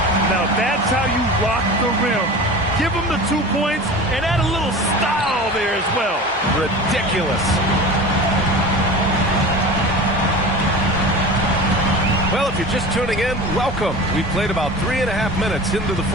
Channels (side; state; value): both; normal; correlation 0.34